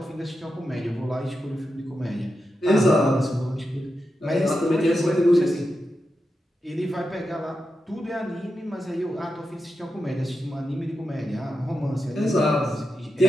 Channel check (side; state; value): both; normal; correlation 0.89